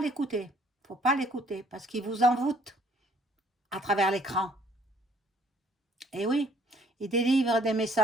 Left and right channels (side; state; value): both; normal; correlation 0.62